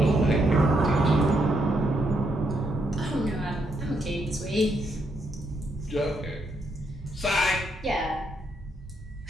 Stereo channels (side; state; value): both; normal; correlation 0.77